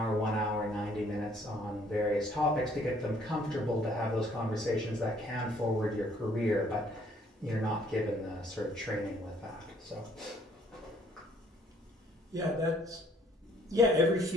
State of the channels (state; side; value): normal; both; correlation 0.62